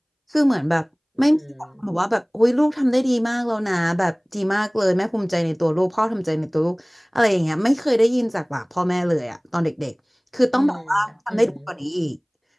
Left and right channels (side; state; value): both; identical; correlation 1.00